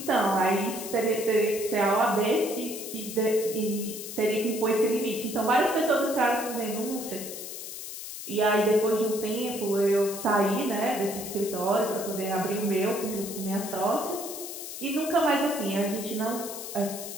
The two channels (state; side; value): noise; left; hiss, 9 dB below the sound